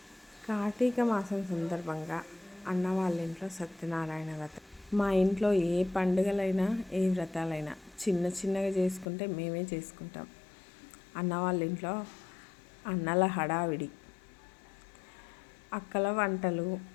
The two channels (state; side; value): drops out; right; at 9.1 s